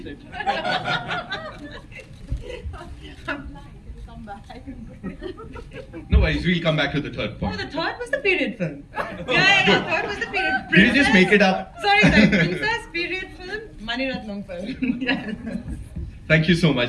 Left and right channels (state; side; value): identical; both; correlation 1.00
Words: it. No worries, we'll come back to the third point. Oh, the third was the period film. Third was the period. Did you just make it up? Sorry, princess, period film, Mani Ratnam film. Yes. Thank you so